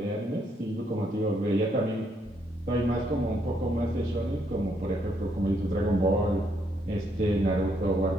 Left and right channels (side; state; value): both; normal; correlation 0.73